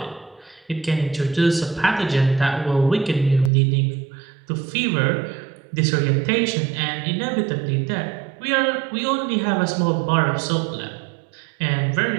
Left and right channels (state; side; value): drops out; left; at 3.5 s